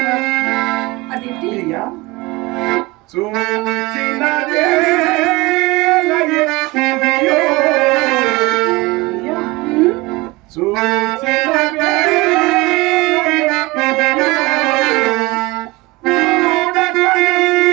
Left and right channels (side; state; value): left; quieter; 22.6 dB